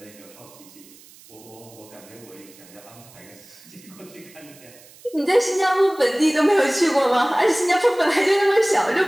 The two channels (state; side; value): noise; right; hiss, 23 dB below the sound